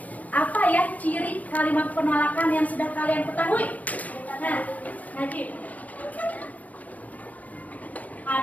apa ya ciri kalimat penolakan yang sudah kalian ketahui? Nah, Najib.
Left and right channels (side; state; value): right; late; 0.075 ms